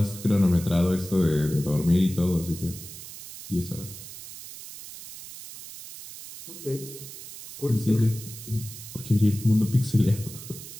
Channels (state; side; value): noise; right; hiss, 13 dB below the sound